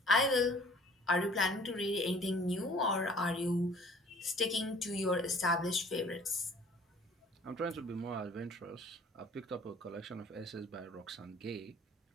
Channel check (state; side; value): normal; both; correlation 0.52